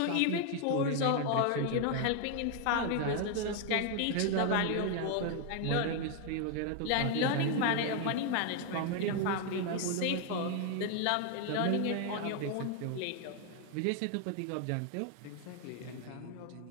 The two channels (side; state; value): both; different; correlation 0.00